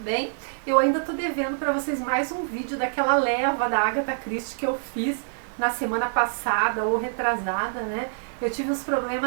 Eu ainda tô devendo para vocês mais um vídeo daquela leva da Agatha Christie que eu fiz na semana passada ou retrasada, né? Eu tive uns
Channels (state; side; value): silent; left; digital silence